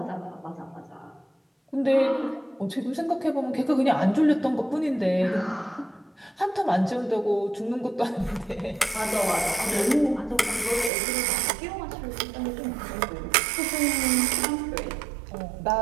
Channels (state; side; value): drops out; left; at 10.9 s